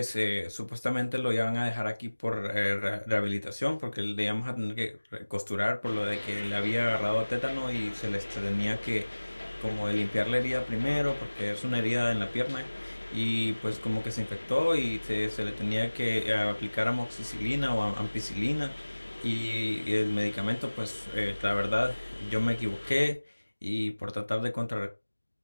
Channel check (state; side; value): inverted; both; correlation -1.00